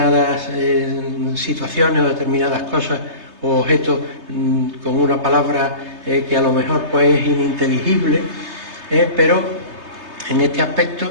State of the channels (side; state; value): left; late; 3.3 ms